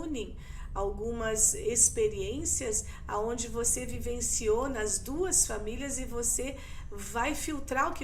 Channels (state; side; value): identical; both; correlation 1.00